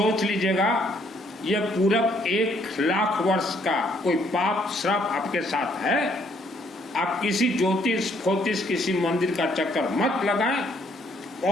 लीजिएगा यह पूरा 1,00,000 वर्ष का कोई पाप श्राप आपके साथ है। आप किसी ज्योतिष फोतिष किसी मंदिर का चक्कर मत लगाएं।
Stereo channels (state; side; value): normal; both; correlation 0.67